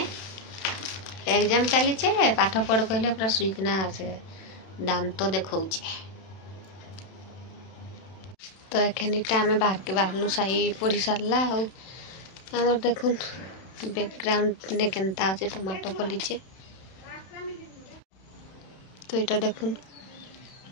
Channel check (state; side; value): late; right; 31 ms